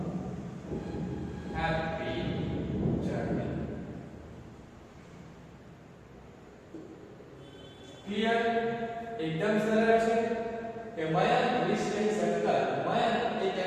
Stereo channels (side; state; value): both; identical; correlation 1.00